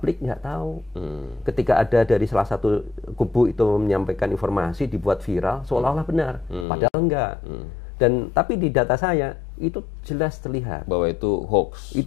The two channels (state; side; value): drops out; right; at 6.7 s